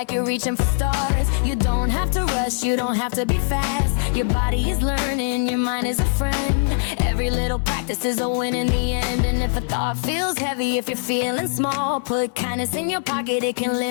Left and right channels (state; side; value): silent; right; digital silence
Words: you're reaching for stars. You don't have to rush, you don't have to be fast. Your body is learning, your mind is a friend. Every little practice is a win in the end. And if a thought feels heavy, if you're feeling small, put kindness in your pocket, it can